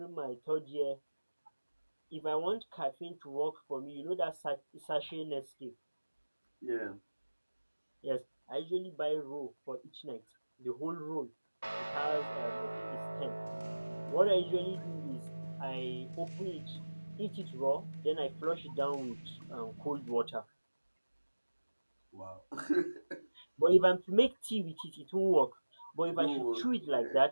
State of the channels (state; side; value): inverted; both; correlation -1.00